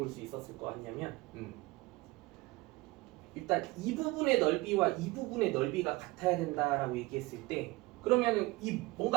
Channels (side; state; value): left; quieter; 21.2 dB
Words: 수 있었을 것 같냐면 일단 이 부분의 넓이와 이 부분의 넓이가 같아야 된다라고 얘기했을 때 그러면은 이